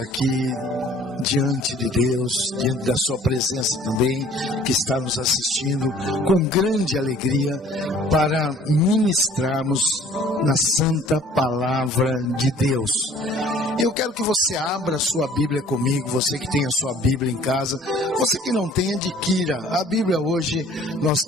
diante de Deus, diante da sua presença também, que está nos assistindo com grande alegria para ministrarmos na santa palavra de Deus. Eu quero que você abra a sua Bíblia comigo, você que tem a sua Bíblia em casa, você que não tem, adquira. A Bíblia hoje nós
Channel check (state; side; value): normal; both; correlation 0.53